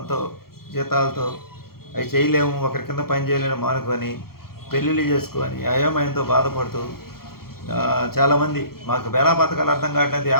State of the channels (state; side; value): late; right; 0.94 ms